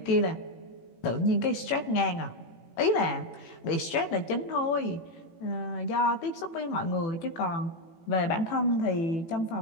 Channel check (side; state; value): right; late; 18 ms